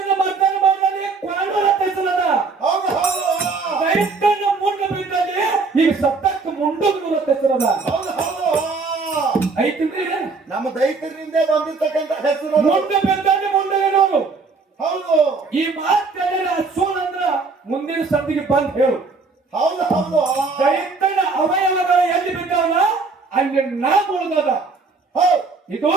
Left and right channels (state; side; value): quieter; left; 4.2 dB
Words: ಮರ್ದನ ಮಾಡಿದಲ್ಲಿ ಕ್ವಾಣೂರ ತೈಸಲದ. ಹೌದು ಹೌದು ದೈತನ ಮುಂಡು ಬಿದ್ದಲ್ಲಿ ಈಗ ಸತ್ತಕ್ಕೆ ಮುಂಡುಗ್ನೂರ ತೈಸಲದ. ಹೌದು ಹೌದು ಐತಿಲ್ರಿ, ನಮ್ಮ ದೈತರಿಂದ ಬಂದಿರ್ತಕ್ಕಂಥ ಹೆಸರು ಮುಂಡು ಬಿದ್ದಲ್ಲಿ ಮುಂಡುಗಿನವರು. ಹೌದು ಈ ಮಾತು ಸೂನ್ ಅಂದ್ರ ಮುಂದಿನ ಸದ್ದಿಗೆ ಬಂದ್ ಹೇಳು. ಹೌದು ಹೌದು ದೈತನ ಅವಯವಗಳು ಎಲ್ಲಿ ಬಿದ್ದಾವಲ್ಲ ಅಲ್ಲಿ ನಾಮ ಉಳಿದದ. ಇದು